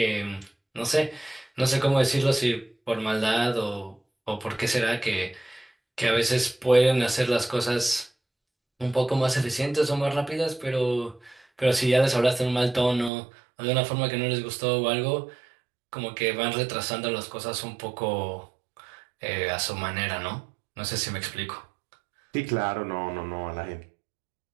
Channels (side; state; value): left; drops out; at 13.1 s